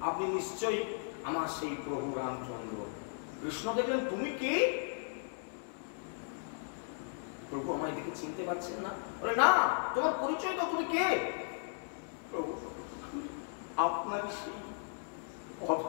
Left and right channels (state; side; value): silent; right; 54 dB below the other